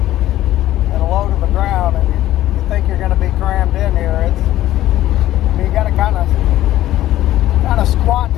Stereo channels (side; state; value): right; quieter; 14.1 dB